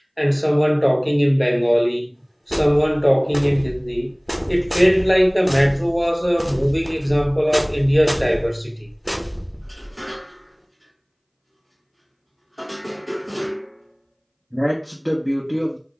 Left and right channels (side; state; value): both; identical; correlation 1.00